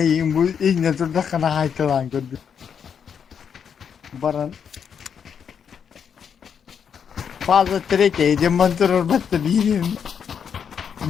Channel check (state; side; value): quieter; right; 7.4 dB